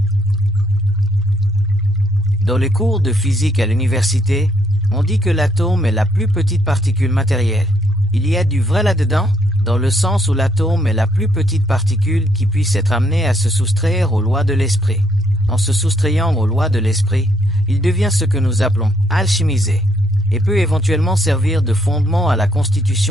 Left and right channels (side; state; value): both; normal; correlation 0.71